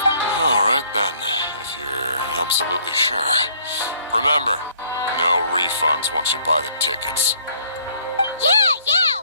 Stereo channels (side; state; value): both; inverted; correlation -0.61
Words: Alright then, if you're absolutely sure. Remember, no refunds once you buy the tickets. Yeah,